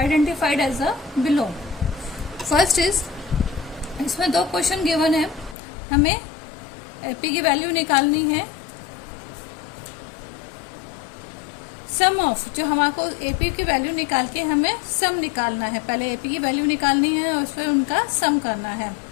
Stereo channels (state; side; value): drops out; right; at 5.6 s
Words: as the below। First is, इसमें दो क्वेश्चन गिवन है, हमें AP की वैल्यू निकालनी है। सम ऑफ, जो हमको एपी की वैल्यू निकाल के हमें सम निकालना है। पहले एपी की वैल्यू निकालनी है और उस पर उनका सम करना है।